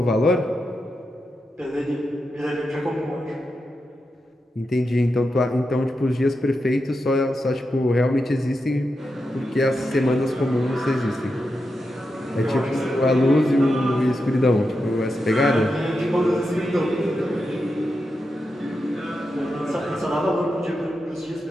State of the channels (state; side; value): normal; both; correlation 0.88